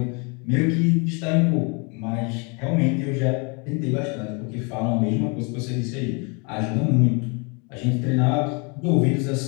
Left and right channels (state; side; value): quieter; right; 32.9 dB